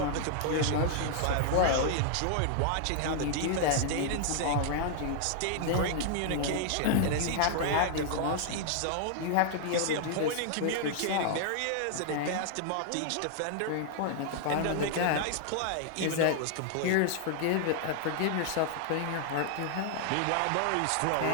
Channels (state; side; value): different; both; correlation 0.00